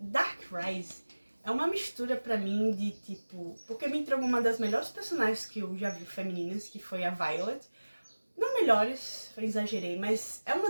Rise é uma mistura pra mim de tipo... Porque me entregou uma das melhores personagens que eu já vi femininas, que foi a Violet. Não melhores, eu exagerei, mas é uma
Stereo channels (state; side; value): inverted; both; correlation -1.00